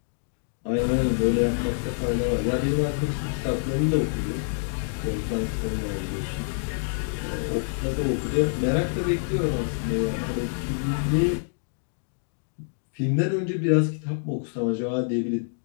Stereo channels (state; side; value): silent; right; digital silence